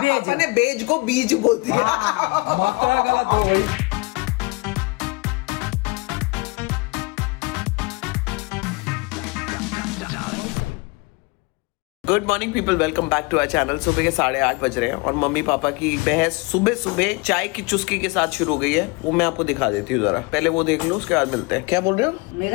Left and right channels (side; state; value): right; quieter; 27.3 dB